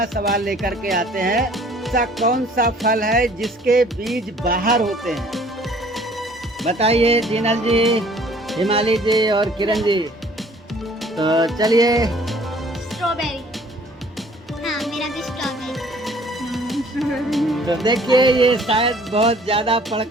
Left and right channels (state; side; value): normal; both; correlation 0.55